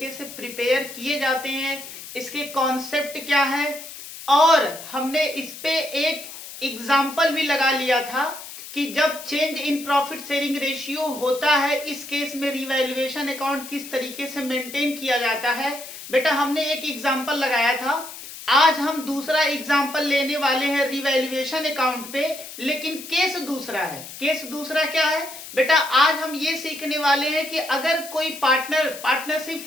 से प्रिपेयर किए जाते हैं, इसके कॉन्सेप्ट क्या है, और हमने इस पे एक एग्जाम्पल भी लगा लिया था कि जब change in profit sharing ratio होता है, इस केस में रिवैल्यूएशन अकाउंट किस तरीके से मेंटेन किया जाता है। बेटा हमने एक एग्जाम्पल लगाया था, आज हम दूसरा एग्जाम्पल लेने वाले हैं रिवैल्यूएशन अकाउंट पे, लेकिन केस दूसरा है। केस दूसरा क्या है बेटा? आज हम ये सीखने वाले हैं कि अगर कोई पार्टनरशिप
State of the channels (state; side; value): noise; left; hiss, 13 dB below the sound